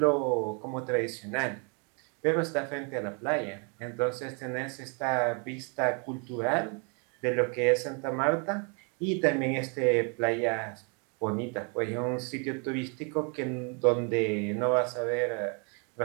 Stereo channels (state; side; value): quieter; left; 36.4 dB